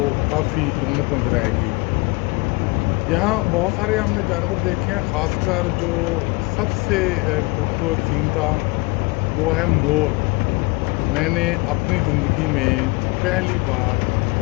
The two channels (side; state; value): right; quieter; 26.1 dB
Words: काफ़ी रौनक नज़र आएगी। यहाँ बहुत सारे हमने जानवर देखे हैं, ख़ासकर जो सबसे खूबसूरत सीन था वो है मोर। मैंने अपनी ज़िंदगी में पहली बार